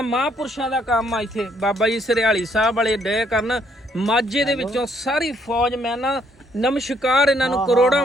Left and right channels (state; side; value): normal; both; correlation 0.69